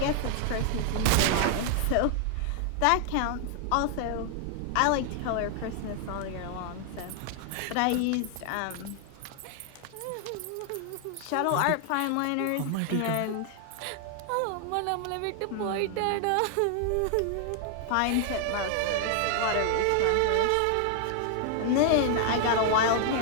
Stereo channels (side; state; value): both; different; correlation 0.00